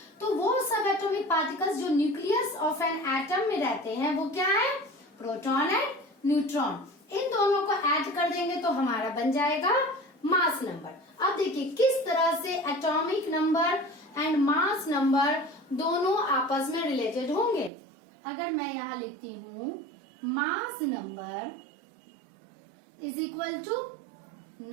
तो वो subatomic particles जो nucleus of an atom में रहते हैं, वो क्या है? Proton and neutron. इन दोनों को ऐड कर देंगे तो हमारा बन जाएगा मास नंबर। अब देखिए किस तरह से atomic number and mass number दोनों आपस में रिलेटेड होंगे। अगर मैं यहाँ लिखती हूँ mass number is equal to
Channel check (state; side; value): drops out; left; at 17.7 s